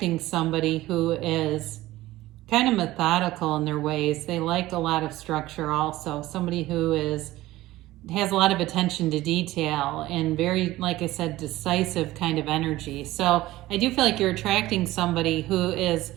somebody who is kind of methodical in their ways. They like a lot of structure also. Somebody who has a lot of attention to detail and very, like I said, decisive kind of energy. So I do feel like you're attracting somebody who is,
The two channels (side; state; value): left; quieter; 16.9 dB